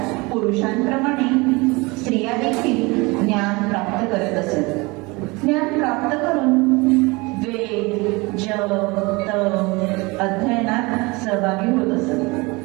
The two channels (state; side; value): quieter; left; 25.1 dB